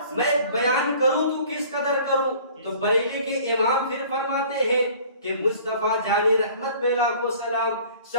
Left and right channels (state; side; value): inverted; both; correlation -0.50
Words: میں بیان کروں تو کس قدر کروں. تو بریلی کے امام پھر فرماتے ہیں کہ مصطفیٰ جان رحمت پہ لاکھوں سلام،